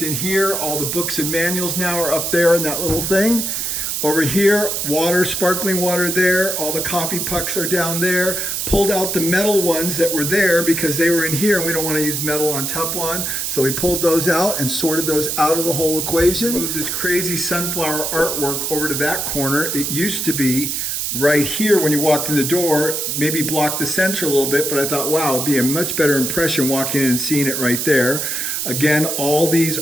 in here. All the books and manuals now are up there in that little thing. Over here, water, sparkling water there. All the coffee pucks are down there. Pulled out the metal ones that were there because they were in here and we don't want to use metal on Teflon. So we pulled those out and sorted those out of the whole equation. Moved this crazy sunflower artwork over to that corner. It used to be right here when you walked in the door, maybe blocked the center a little bit, but I thought, wow, it'd be a much better impression walking in and seeing it right there. Again, all these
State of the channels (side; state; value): right; noise; hiss, 1 dB below the sound